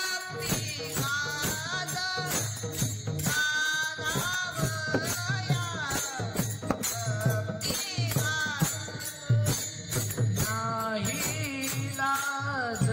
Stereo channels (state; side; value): identical; both; correlation 1.00